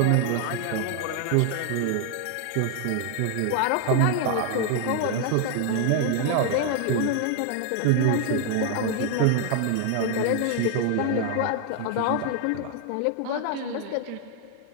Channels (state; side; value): different; both; correlation 0.00